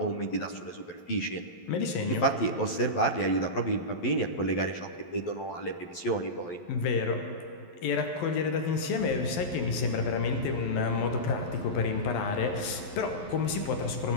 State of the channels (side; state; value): right; late; 11 ms